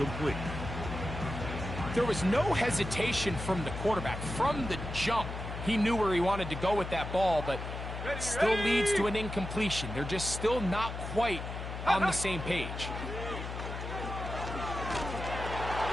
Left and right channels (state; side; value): noise; left; hum, 7 dB below the sound